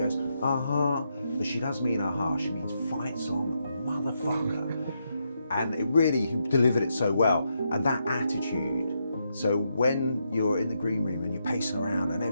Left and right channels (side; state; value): both; inverted; correlation -0.81